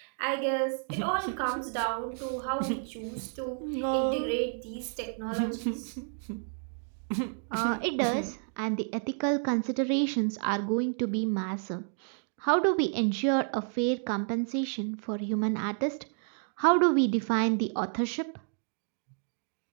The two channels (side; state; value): left; silent; 57 dB below the other